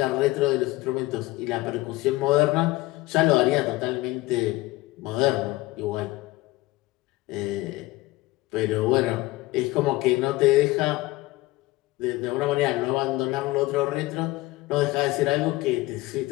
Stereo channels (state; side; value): quieter; right; 19.4 dB